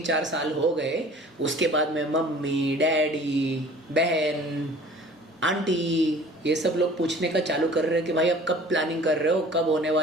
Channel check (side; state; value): both; normal; correlation 0.48